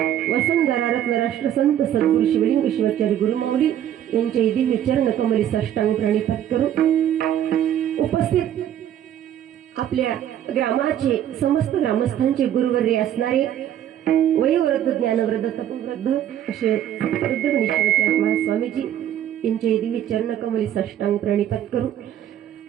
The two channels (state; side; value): quieter; left; 10.8 dB